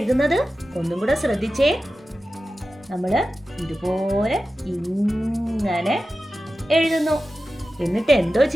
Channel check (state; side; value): normal; both; correlation 0.93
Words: ഒന്നും കൂടെ ശ്രദ്ധിച്ചേ. നമ്മൾ ഇതുപോലെ ഇങ്ങനെ എഴുതുന്നു. എന്നിട്ട് എന്തോ